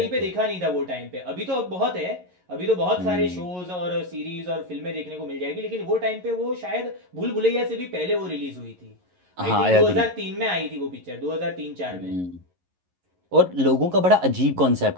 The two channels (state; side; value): late; left; 11 ms